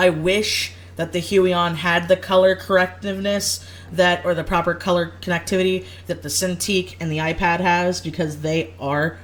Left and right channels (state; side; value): identical; both; correlation 1.00